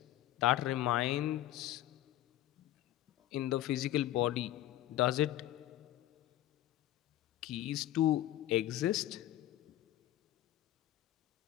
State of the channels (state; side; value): quieter; right; 13.9 dB